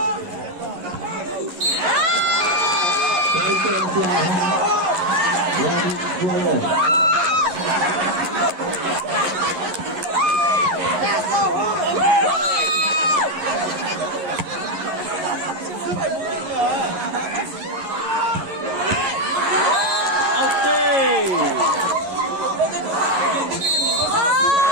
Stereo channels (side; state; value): left; late; 11 ms